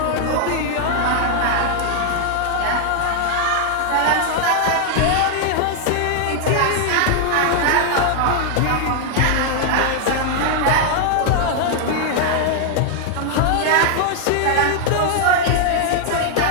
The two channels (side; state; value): both; different; correlation 0.00